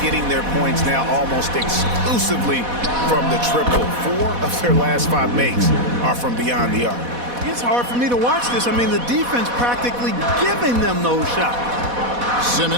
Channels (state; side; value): late; left; 4.1 ms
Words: getting their points now almost exclusively from the triple. 4 of their last 5 makes are from beyond the arc. It's hard for me to watch this. I mean, the defense practically giving them those shots.